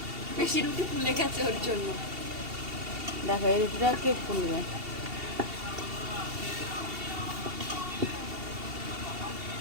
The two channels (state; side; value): late; left; 2.7 ms